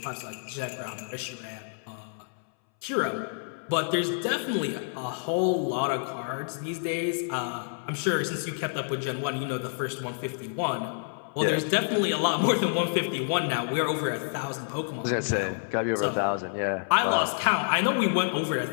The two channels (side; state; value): right; silent; 59 dB below the other